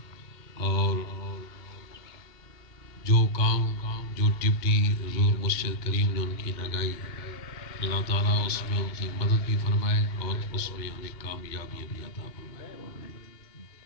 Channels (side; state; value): right; late; 2.1 ms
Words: اور جو کام جو ڈپٹی حضور مرشد کریم نے ان کی لگائی، اللہ تعالیٰ اس میں ان کی مدد بھی فرمائے اور اس میں انہیں کامیابی بھی عطا فرمائے۔